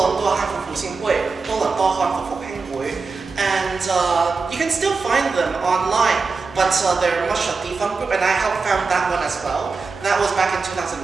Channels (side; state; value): left; quieter; 4.4 dB